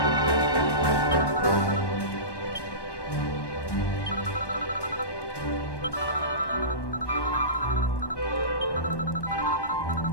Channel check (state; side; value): late; right; 1.2 ms